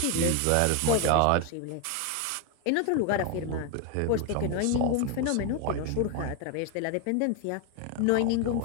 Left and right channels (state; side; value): different; both; correlation 0.01